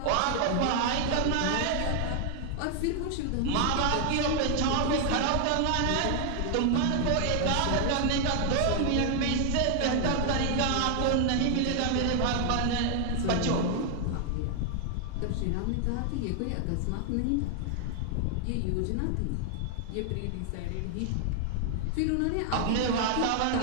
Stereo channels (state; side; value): different; both; correlation 0.00